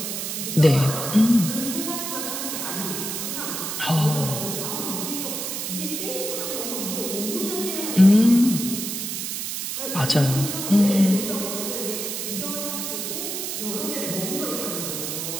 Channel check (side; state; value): right; noise; hiss, 4 dB below the sound